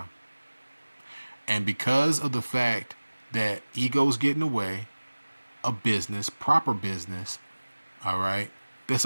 And because of the fact that ego's getting away, a business, proper business, all right, there's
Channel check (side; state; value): both; inverted; correlation -1.00